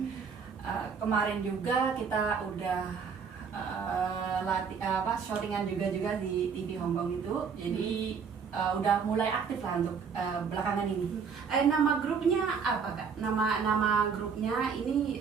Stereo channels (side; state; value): left; quieter; 6.2 dB